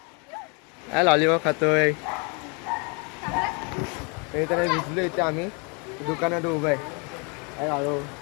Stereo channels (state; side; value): quieter; right; 33.6 dB